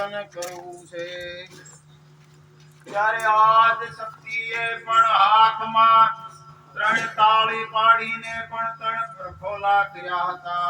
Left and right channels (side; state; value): both; identical; correlation 1.00